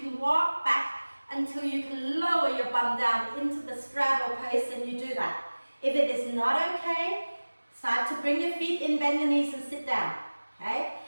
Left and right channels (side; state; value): both; inverted; correlation -1.00